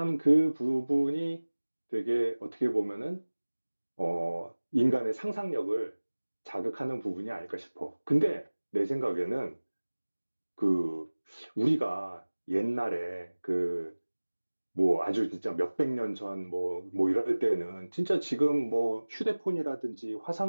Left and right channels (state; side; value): inverted; both; correlation -1.00